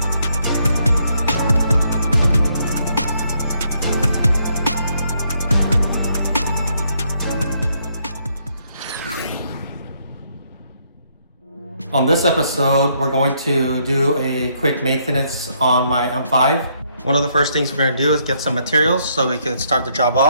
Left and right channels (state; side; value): inverted; both; correlation -0.72